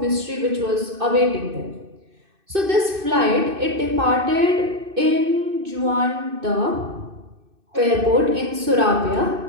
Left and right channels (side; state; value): left; late; 2.6 ms